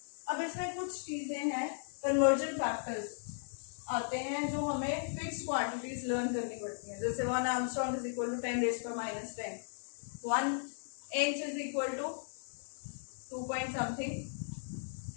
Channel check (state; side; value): silent; right; digital silence